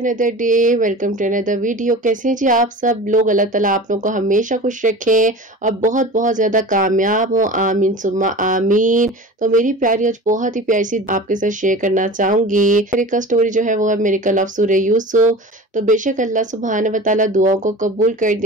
day, welcome to another video. कैसे हैं जी आप सब लोग? अल्लाह ताला आप लोगों को हमेशा खुश रखे और बहुत बहुत ज्यादा कामयाब हो, आमीन सुम्मा आमीन। तो मेरी प्यारी आज बहुत ही प्यारी सी आपके साथ शेयर करना चाहूंगी। मेरी का स्टोरी जो है वो है मेरे कल ऑफ सूरह यूसुफ। तो बेशक अल्लाह सुब्हान व तआला दुआओं को कबूल कर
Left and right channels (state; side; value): normal; both; correlation 0.35